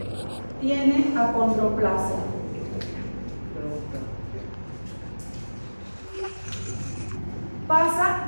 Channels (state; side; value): inverted; both; correlation -1.00